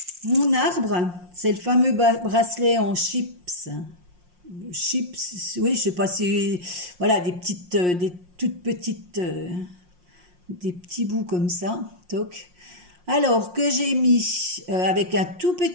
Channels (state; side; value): late; left; 5.6 ms